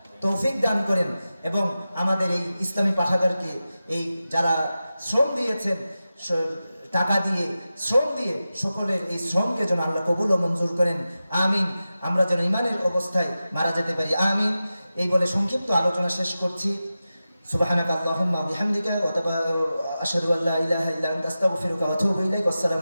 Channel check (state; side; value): inverted; both; correlation -0.93